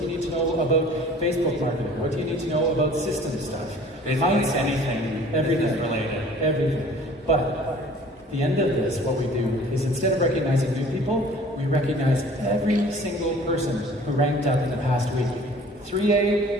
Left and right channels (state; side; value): normal; both; correlation 0.49